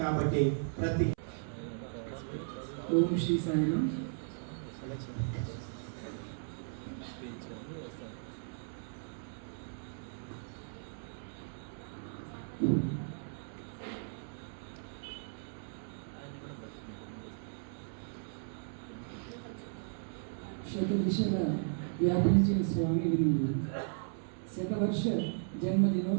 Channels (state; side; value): silent; left; 54 dB below the other